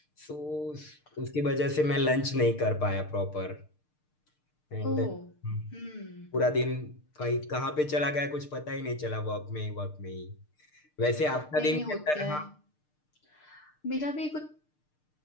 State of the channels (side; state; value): right; late; 6.6 ms